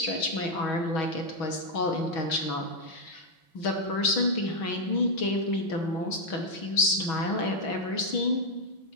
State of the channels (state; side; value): late; right; 6.2 ms